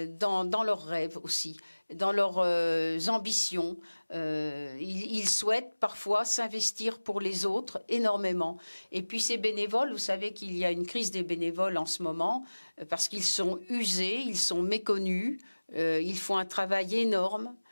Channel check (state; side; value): inverted; both; correlation -1.00